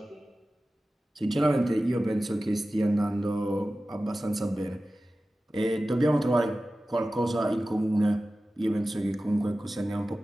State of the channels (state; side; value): normal; both; correlation 0.95